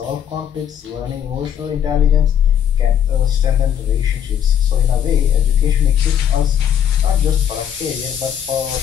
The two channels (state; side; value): quieter; right; 9.4 dB